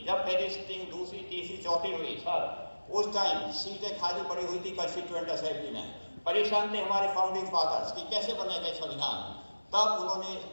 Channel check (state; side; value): inverted; both; correlation -1.00